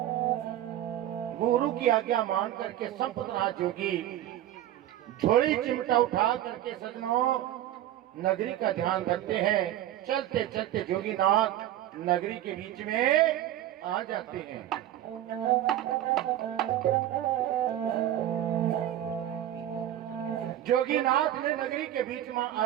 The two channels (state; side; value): quieter; left; 12.8 dB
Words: गुरु की आज्ञा मान करके संपतनाथ जोगी झोली चिमटा उठा करके सजनों नगरी का ध्यान रखते हैं। चलते चलते जोगीनाथ नगरी के बीच में आ जाते हैं। जोगीनाथ ने नगरी के बीच में